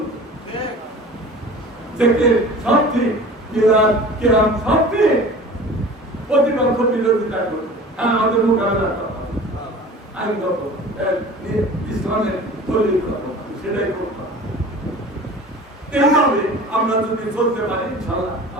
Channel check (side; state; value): both; normal; correlation 0.40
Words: থেকে সব ঠিক, মিলাদ কেরাম সব ঠিক, প্রতিপক্ষ বিরোধিতা করবে। হ্যাঁ, আমাদের মোকাবেলা করা আইনগত ইসলামের তৈরি করা, সেটাই করতে হবে। এইভাবে আমরা যদি চলতে পারি, ইনশাআল্লাহ